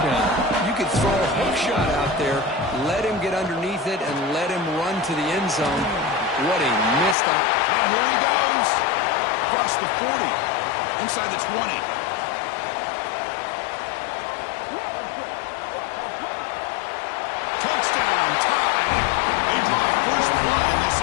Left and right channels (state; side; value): drops out; right; at 7.2 s